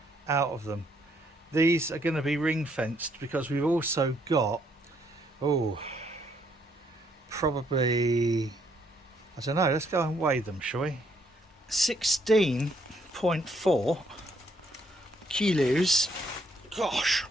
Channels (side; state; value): both; normal; correlation 0.70